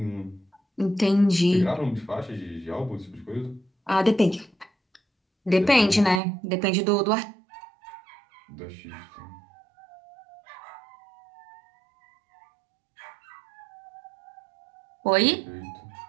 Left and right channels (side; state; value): left; drops out; at 6.2 s